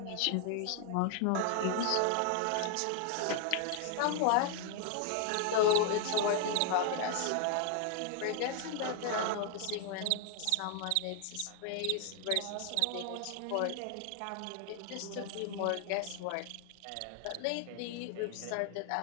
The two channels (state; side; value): different; both; correlation 0.00